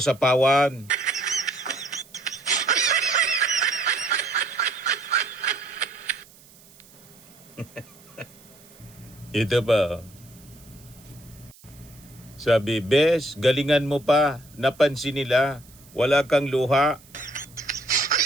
sapawan. Ito pa. Sabi, Bes, galingan mo pa. Napansin nila. Wala kang luha.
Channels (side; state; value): right; noise; hiss, 25 dB below the sound